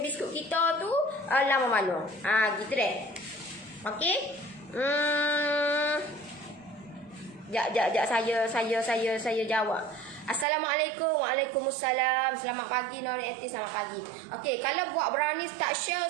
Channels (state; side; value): drops out; left; at 10.5 s